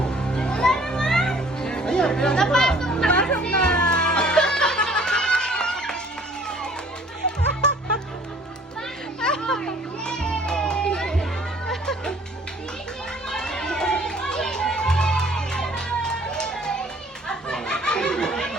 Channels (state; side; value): normal; both; correlation 0.55